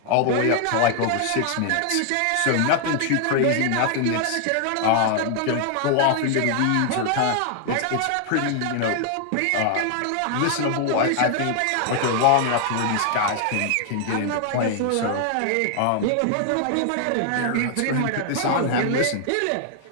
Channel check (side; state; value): both; different; correlation 0.00